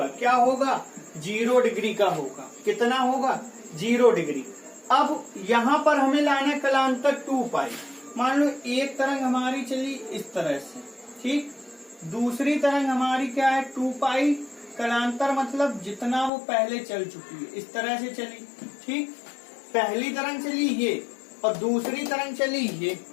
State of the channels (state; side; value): drops out; right; at 16.3 s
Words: क्या होगा? 0 डिग्री का होगा। कितना होगा? 0 डिग्री। अब यहाँ पर हमें लाना कलांतर 2 पाई। मान लो एक तरंग हमारी चली इस तरह से, ठीक, दूसरी तरंग हमारी क्या है? 2 पाई। कलांतर मतलब जितना वो पहले चल चुकी है, इस तरह से चली, ठीक। पहली तरंग चली ये और दूसरी तरंग चली ये,